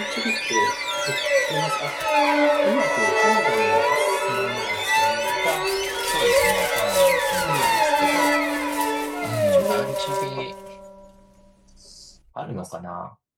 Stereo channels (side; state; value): both; identical; correlation 1.00